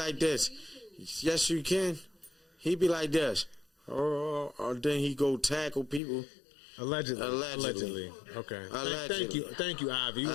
this. Yes, you can. He be like this. Or then he go tackle people. Allegedly. Okay. Allegedly. Thank you, Ivy. We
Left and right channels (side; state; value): right; drops out; at 6.0 s